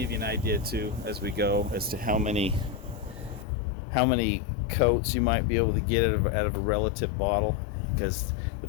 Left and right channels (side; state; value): right; drops out; at 3.5 s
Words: you an idea too as we go as to how many coats you might be able to get out of a relative bottle, because The